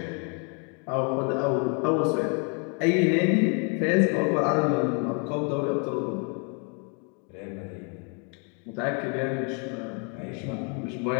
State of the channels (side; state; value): right; quieter; 37.1 dB